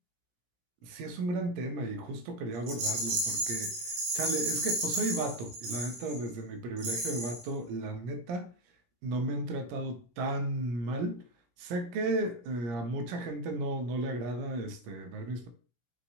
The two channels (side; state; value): left; late; 17 ms